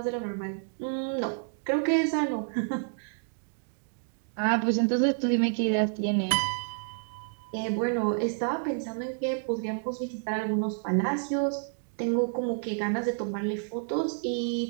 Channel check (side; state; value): left; silent; digital silence